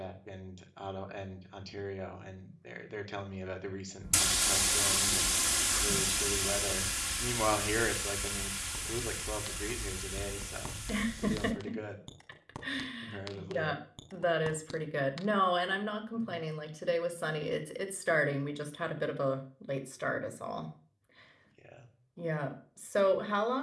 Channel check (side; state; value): both; identical; correlation 1.00